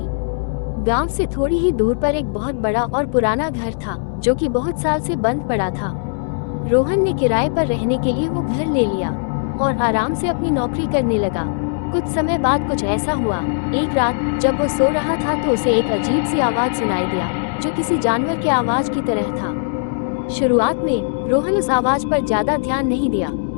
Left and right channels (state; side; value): silent; right; digital silence